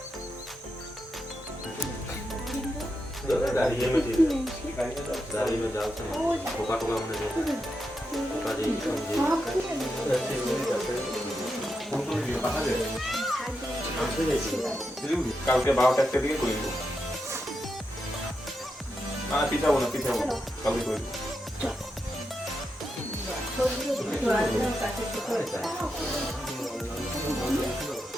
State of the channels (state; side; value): normal; both; correlation 0.85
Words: दाढ़ी में ठीक दाढ़ी में डालते हैं टोका टोका हमने टोका जी কালকে 12টা একটা দিকে করে দেব না পিঠাবো না কালকে করে দেব।